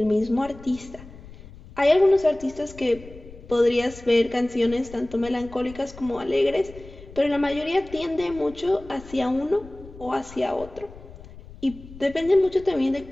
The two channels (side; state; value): left; noise; rumble, 18 dB below the sound